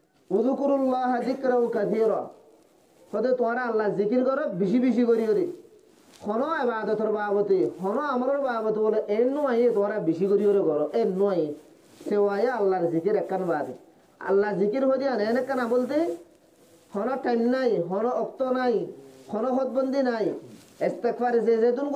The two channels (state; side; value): identical; both; correlation 1.00